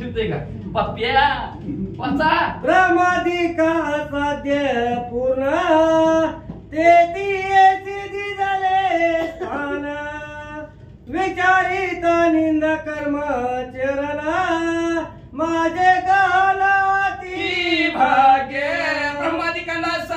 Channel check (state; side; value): identical; both; correlation 1.00